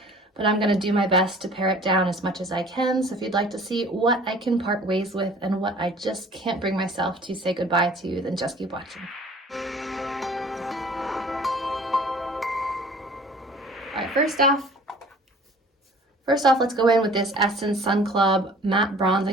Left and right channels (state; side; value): normal; both; correlation 0.49